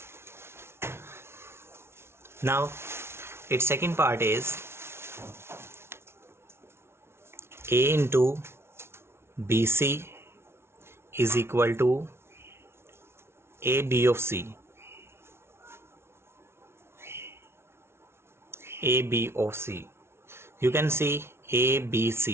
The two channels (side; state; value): left; late; 0.12 ms